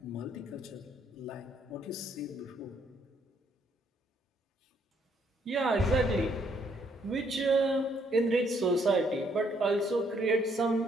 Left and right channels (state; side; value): normal; both; correlation 0.69